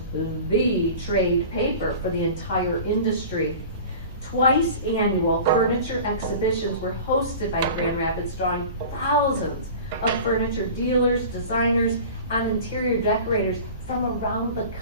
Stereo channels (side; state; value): both; inverted; correlation -0.38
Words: the trade paper for the entire industry. Twice annual furniture exhibitions were hosted by Grand Rapids, drawing thousands of furniture dealers, designers, and interior decorators from around the